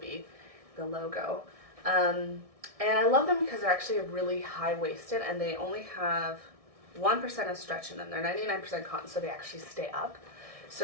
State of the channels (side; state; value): left; late; 1.6 ms